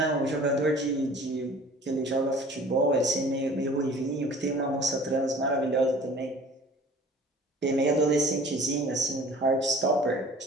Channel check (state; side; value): normal; both; correlation 0.47